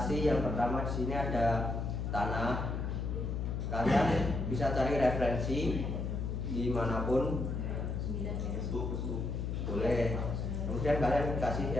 yang pertama di sini ada tanah. Kalian bisa cari referensi dimanapun, boleh. Kemudian kalian kasih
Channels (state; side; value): noise; left; hum, 2 dB below the sound